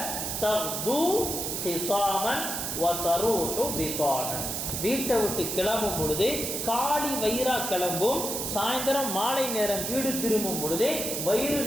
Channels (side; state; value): right; noise; hiss, 3 dB below the sound